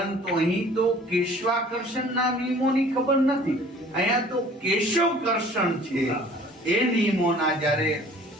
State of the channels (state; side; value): normal; both; correlation 0.50